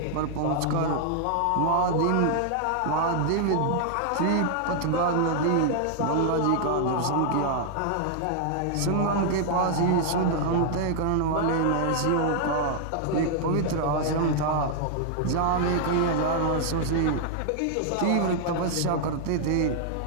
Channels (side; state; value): both; different; correlation 0.00